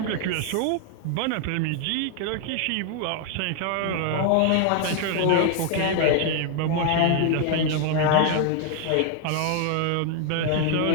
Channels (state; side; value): different; both; correlation 0.00